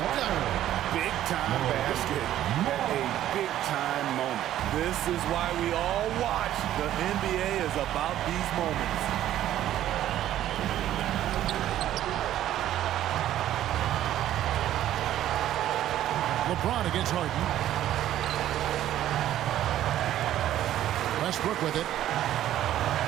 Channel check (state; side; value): quieter; left; 12.5 dB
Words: Big time basket. A big time moment. This is why we all watch. The NBA is about these moments. LeBron against Harden. Westbrook with it.